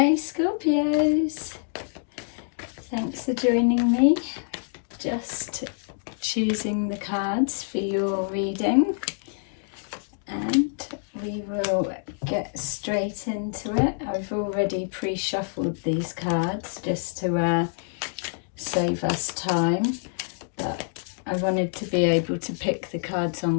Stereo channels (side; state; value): right; silent; digital silence